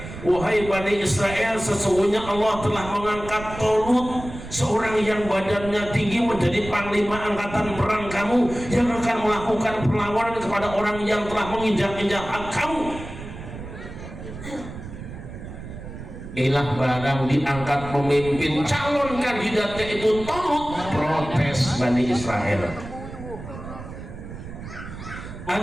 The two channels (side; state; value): right; noise; rumble, 11 dB below the sound